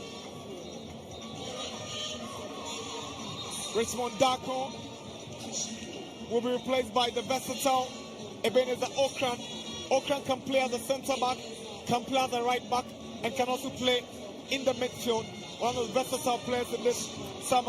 Richmond Darko will be replaced by the versatile Ebenezer Okran. Okran can play as a centre back, can play as a right back, and can also play in the midfield. One of the versatile players in this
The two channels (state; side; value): identical; both; correlation 1.00